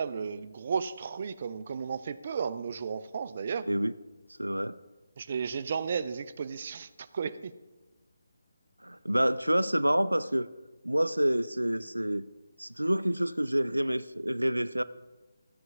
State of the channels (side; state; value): both; inverted; correlation -0.96